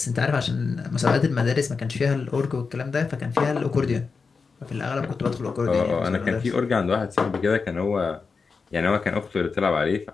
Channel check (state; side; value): quieter; right; 4.9 dB